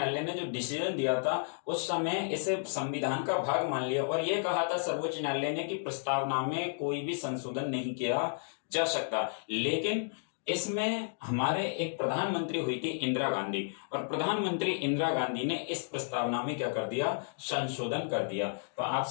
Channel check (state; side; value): silent; right; digital silence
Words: ने जो डिसीजन दिया था उस समय इसे संविधान का भाग मान लिया और यह कहा था सर्वोच्च न्यायालय ने कि प्रस्तावना में कोई भी संशोधन नहीं किया जा सकता। लेकिन इसमें हमारे एक प्रधानमंत्री हुई थी इंदिरा गांधी, और प्रधानमंत्री इंदिरा गांधी ने इस प्रस्तावना में क्या कर दिया? संशोधन कर दिया। तो